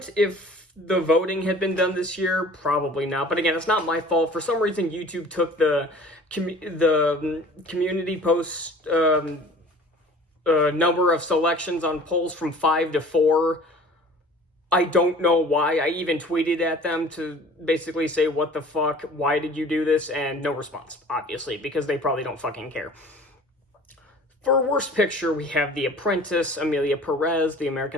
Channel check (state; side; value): normal; both; correlation 0.46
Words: if the voting had been done this year? Probably not. But again, it's not my fault. For some reason, YouTube took the community post number of selections on polls from 5 to 4. I don't know why. I even tweeted at them to basically say, what the fuck, why did you do this? And no response, obviously, because they probably don't fucking care. For Worst Picture, we have The Apprentice, Amelia Perez, The